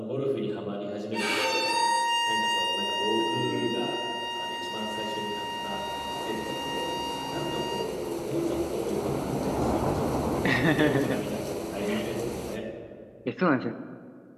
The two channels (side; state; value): both; identical; correlation 1.00